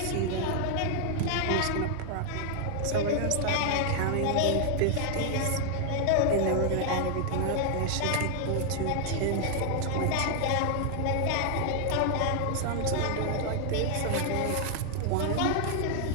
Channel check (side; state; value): both; different; correlation 0.00